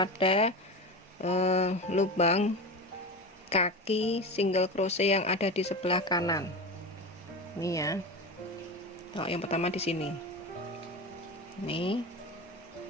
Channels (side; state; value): both; normal; correlation 0.25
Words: lubang kaki single crochet yang ada di sebelah kanan. Ini ya. Oh, yang pertama di sini. Ini.